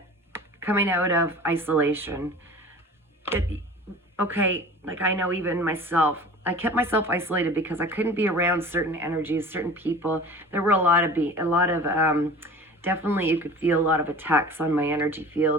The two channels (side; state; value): both; normal; correlation 0.40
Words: coming out of isolation, like I know even myself, I kept myself isolated because I couldn't be around certain energies, certain people. There were a lot of definitely you could feel a lot of attacks on my energy